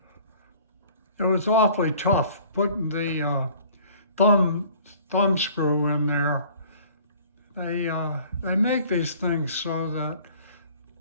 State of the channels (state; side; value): inverted; both; correlation -0.51